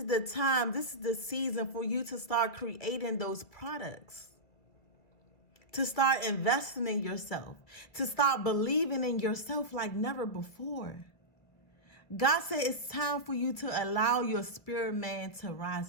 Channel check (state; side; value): late; right; 2.2 ms